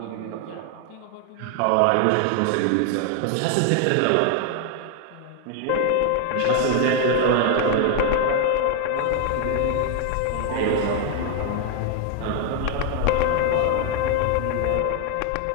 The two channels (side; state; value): both; different; correlation 0.00